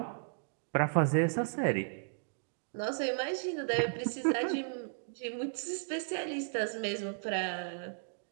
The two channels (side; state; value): left; silent; digital silence